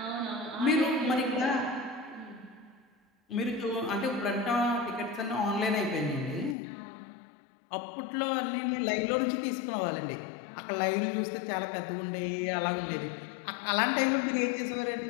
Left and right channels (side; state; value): right; drops out; at 6.6 s